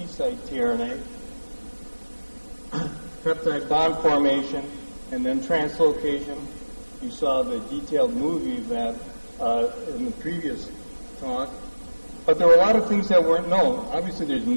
tRNA, peptide bond formation, and then translocation. You saw the detailed movie of that in the previous talk. But there were a lot of things that weren't known. Obviously, there's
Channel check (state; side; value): inverted; both; correlation -1.00